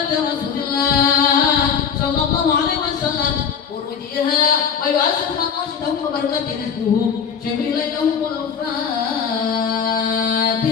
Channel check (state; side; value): quieter; right; 7.0 dB